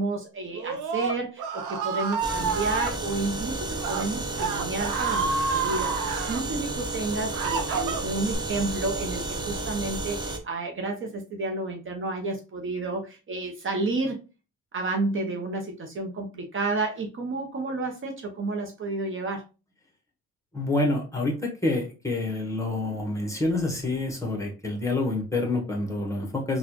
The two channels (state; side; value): normal; both; correlation 0.30